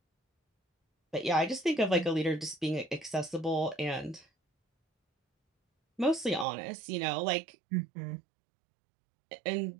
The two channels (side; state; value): left; drops out; at 6.5 s